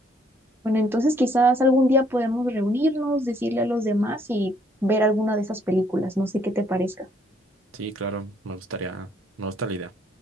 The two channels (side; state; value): both; normal; correlation 0.66